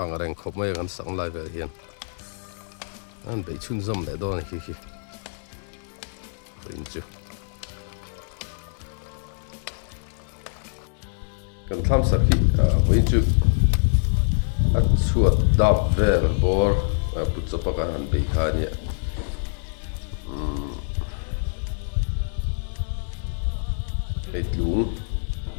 ang reng khop mai kan sang lai vel hian an bei chun zom le don hi voin chu kan Thlamsak hi voin chu a chuat dap vel bor putchapa kan han bei ha nia hei tlung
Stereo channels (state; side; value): silent; right; digital silence